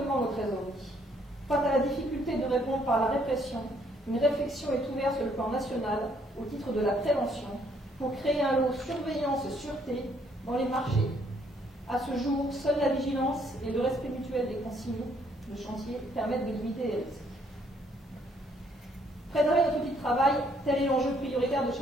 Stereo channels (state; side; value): normal; both; correlation 0.67